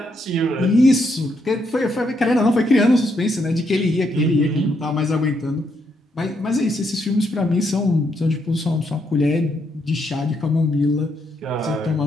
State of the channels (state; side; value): normal; both; correlation 0.77